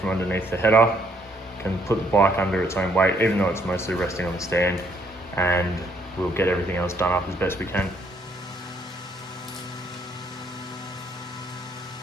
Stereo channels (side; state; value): both; normal; correlation 0.69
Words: underneath the header, can put the bike under its own weight, even though it's mostly resting on the stand, and we'll get everything else done up as best we can.